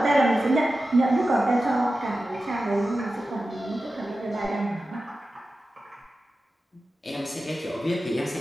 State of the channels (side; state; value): both; normal; correlation 0.93